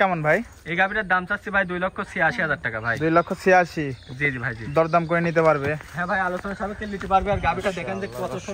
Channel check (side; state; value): both; identical; correlation 1.00